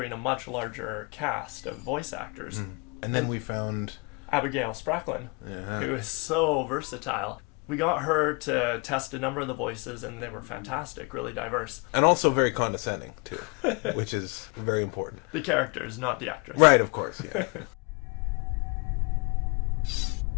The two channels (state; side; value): quieter; right; 31.3 dB